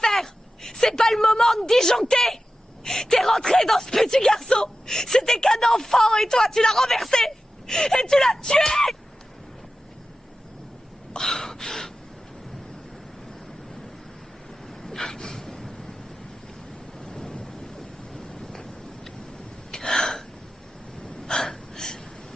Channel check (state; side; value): normal; both; correlation 0.93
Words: C'est pas le moment de disjoncter! T'es rentré dans ce petit garçon! C'était qu'un enfant et toi, tu l'as renversé! Et tu l'as tué!